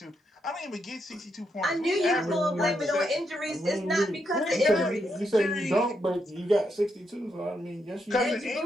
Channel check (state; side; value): normal; both; correlation 0.80